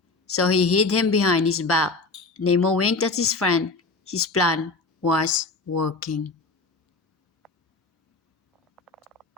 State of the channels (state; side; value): quieter; right; 3.6 dB